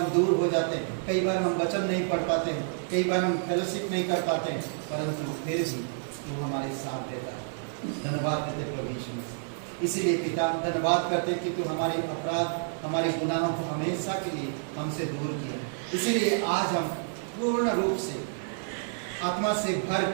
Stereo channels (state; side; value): silent; left; digital silence